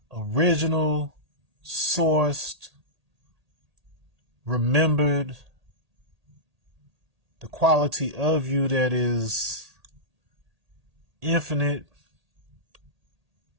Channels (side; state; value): left; late; 1.8 ms